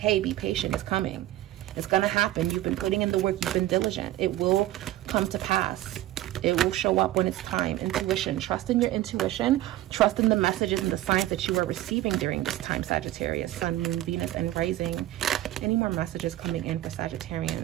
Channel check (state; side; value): quieter; left; 14.8 dB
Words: be patient. It's coming. It's gonna happen. You've been putting in the work. You've been diligent. It will come to pass. It will show up when it's time. Intuition. Trust in your intuition. Trust in the messages and the signs that you are receiving during this time, Sagittarius. Sun, Moon, Venus, and Rising. Any more messages coming in for